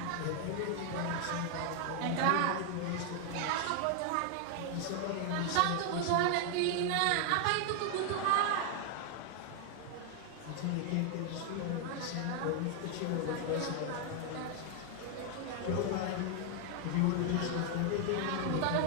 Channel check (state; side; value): different; both; correlation 0.00